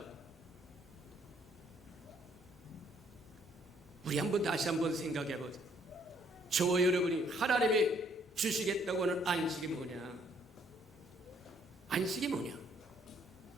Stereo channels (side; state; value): both; normal; correlation 0.65